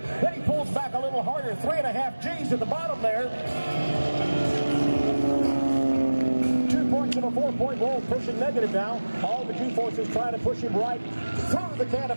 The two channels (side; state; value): both; inverted; correlation -1.00